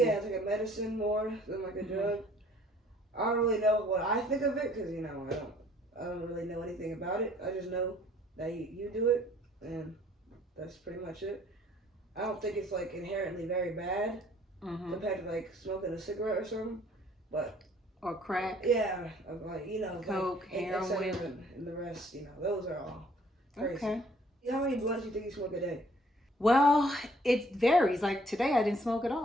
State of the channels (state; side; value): normal; both; correlation 0.58